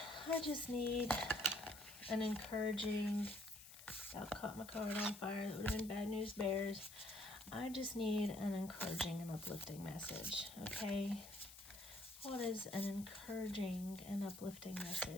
I just need an encouraging, I caught my card on fire. That would have been bad news bears. I just need an encouraging and uplifting message. Okay. What is an encouraging and uplifting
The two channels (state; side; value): noise; left; hiss, 16 dB below the sound